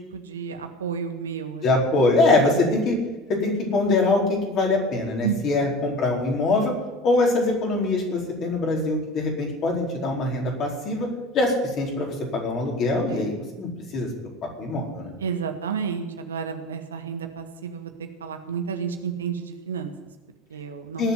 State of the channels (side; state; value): both; normal; correlation 0.36